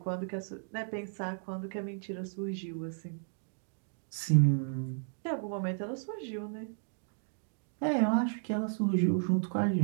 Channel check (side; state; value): left; silent; digital silence